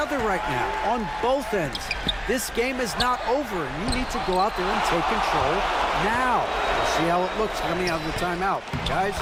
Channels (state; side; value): identical; both; correlation 1.00